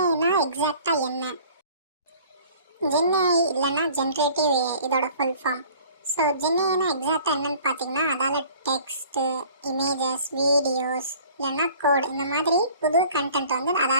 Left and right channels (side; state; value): both; inverted; correlation -0.49